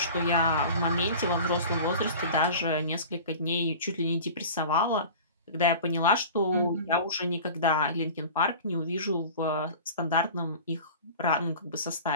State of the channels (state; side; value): inverted; both; correlation -0.38